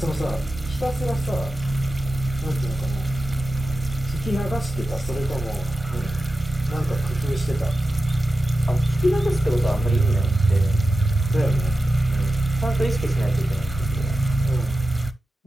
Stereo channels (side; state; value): both; normal; correlation 0.93